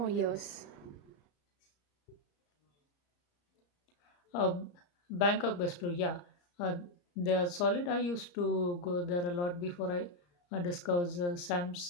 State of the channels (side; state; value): right; late; 34 ms